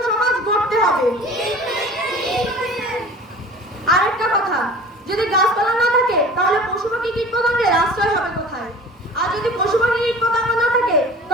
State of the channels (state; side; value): normal; both; correlation 0.42